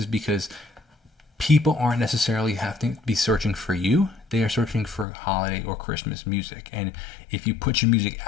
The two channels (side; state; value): right; drops out; at 5.1 s